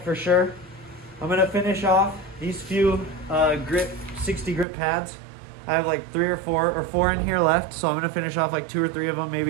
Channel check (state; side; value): drops out; left; at 4.7 s